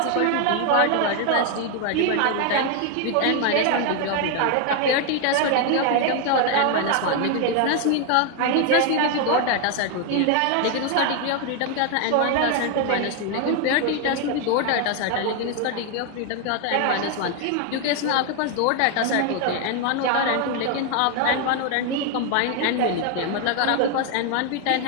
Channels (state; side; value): different; both; correlation 0.00